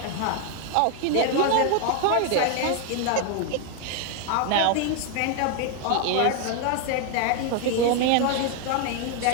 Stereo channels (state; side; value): different; both; correlation 0.01